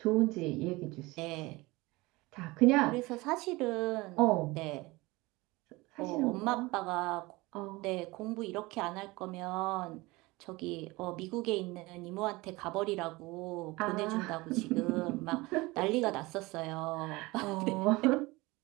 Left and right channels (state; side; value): quieter; left; 22.1 dB